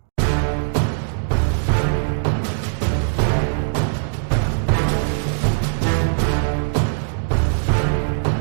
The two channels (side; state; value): left; silent; digital silence